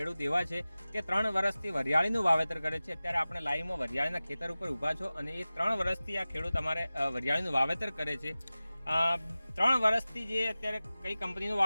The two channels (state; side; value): inverted; both; correlation -0.97